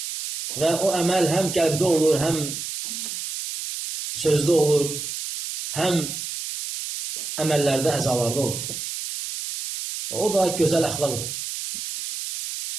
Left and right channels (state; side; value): noise; right; hiss, 6 dB below the sound